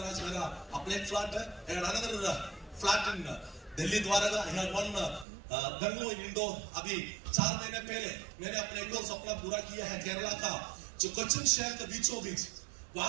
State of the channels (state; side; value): drops out; left; at 5.2 s